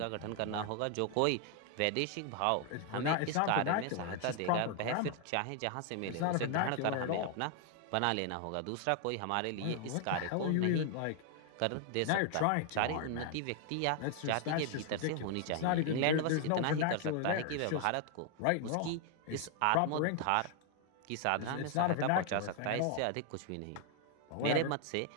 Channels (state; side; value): different; both; correlation 0.00